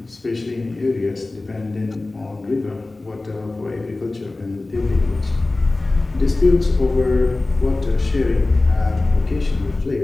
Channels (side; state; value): right; quieter; 3.1 dB